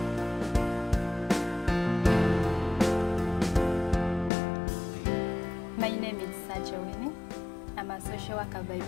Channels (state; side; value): drops out; right; at 4.3 s